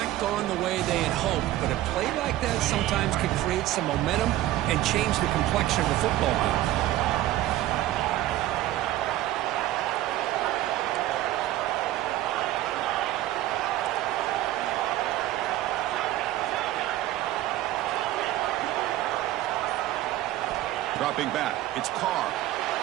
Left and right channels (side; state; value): left; quieter; 14.8 dB